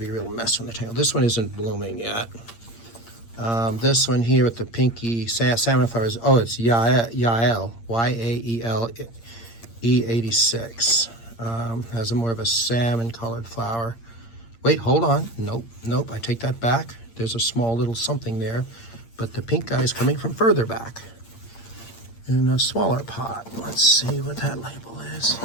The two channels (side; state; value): right; late; 8.7 ms